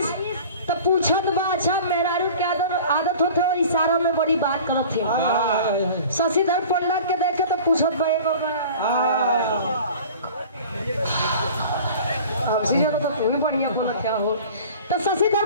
तो पूछत बा अच्छा मेहरारू के आदत होते और इशारा में बड़ी बात करत थे शशिधर पंडा के देखे तो पूछत बा तो तू भी बढ़िया बोला क्या हो तो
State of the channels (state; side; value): inverted; both; correlation -0.42